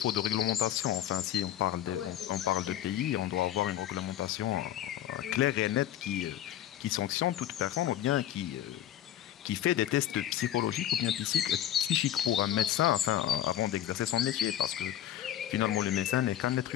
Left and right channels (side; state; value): right; quieter; 11.8 dB